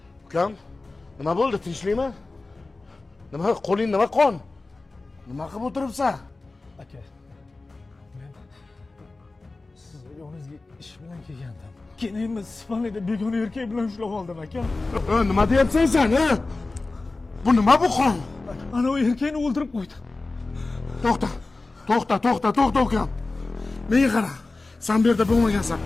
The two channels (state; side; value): quieter; right; 3.4 dB